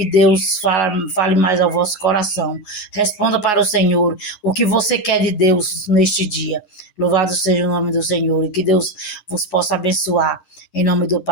Deus fale mais ao vosso coração. Responda para o Senhor o que você quer de Deus neste dia. Louvado seja o nome do Senhor, e que Deus vos possa abençoar, em nome do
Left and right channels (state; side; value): late; right; 9.5 ms